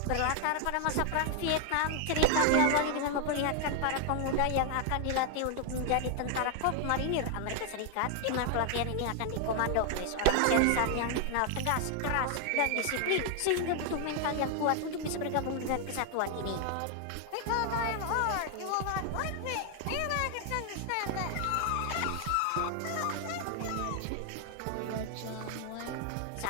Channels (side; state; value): both; different; correlation 0.00